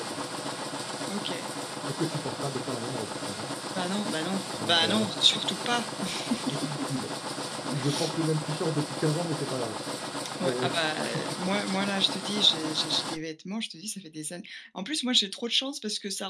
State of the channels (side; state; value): both; identical; correlation 1.00